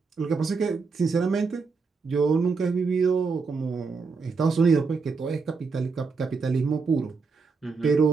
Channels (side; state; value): left; quieter; 4.7 dB